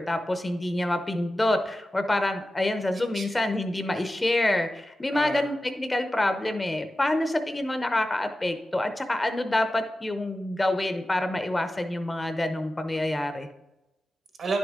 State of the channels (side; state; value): both; normal; correlation 0.93